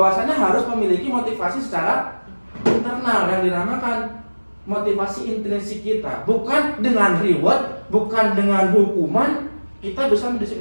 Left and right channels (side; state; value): both; inverted; correlation -1.00